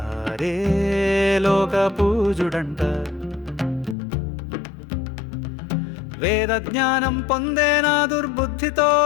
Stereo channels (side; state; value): right; drops out; at 4.0 s